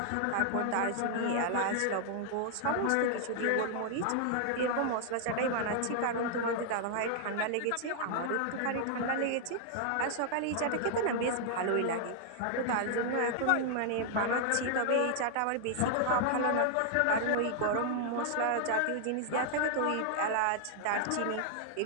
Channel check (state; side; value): different; both; correlation 0.00